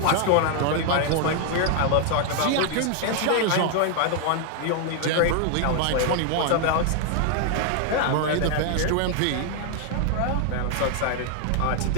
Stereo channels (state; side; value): different; both; correlation 0.00